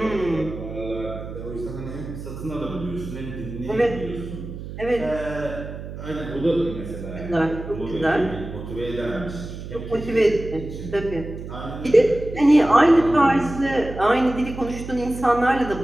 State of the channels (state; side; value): noise; right; hum, 10 dB below the sound